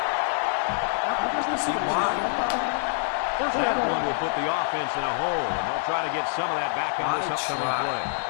See why? That one will put the offense in a hole, and they'll try to get some of that back on this upcoming play.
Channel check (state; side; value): silent; right; digital silence